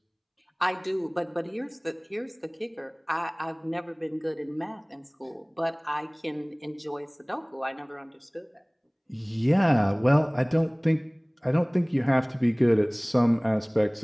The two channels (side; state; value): both; identical; correlation 1.00